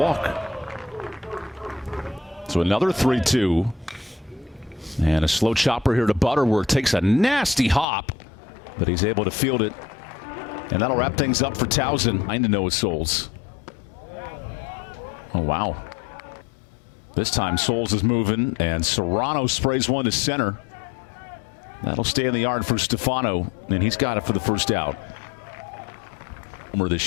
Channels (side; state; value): right; drops out; at 7.9 s